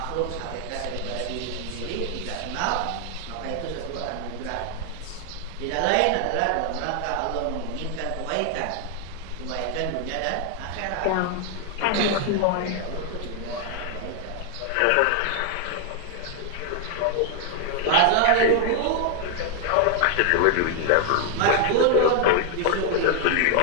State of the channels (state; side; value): different; both; correlation 0.00